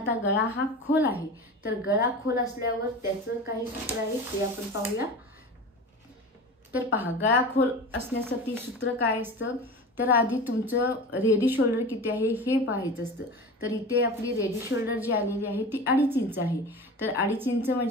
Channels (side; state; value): both; normal; correlation 0.32